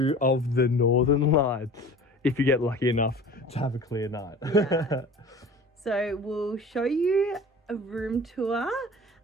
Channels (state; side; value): normal; both; correlation 0.41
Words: of the Northern Lights, if you get lucky enough to have a clear night. Yeah. So we'll show you a room tour,